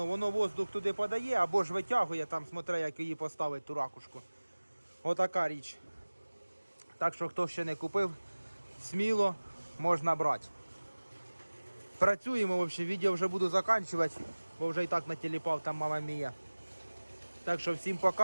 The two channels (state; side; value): inverted; both; correlation -1.00